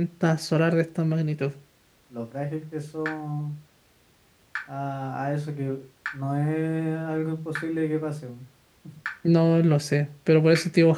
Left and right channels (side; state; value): both; identical; correlation 1.00